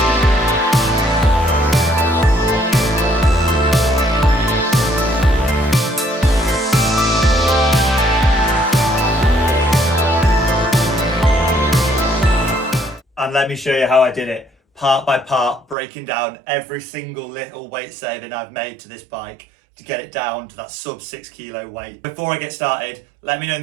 And let me show you how I did it, part by part, breaking down every single little weight saving I've made to this bike to get it down to that sub 6 kilo weight. Before I get started, let me know in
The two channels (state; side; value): drops out; left; at 15.8 s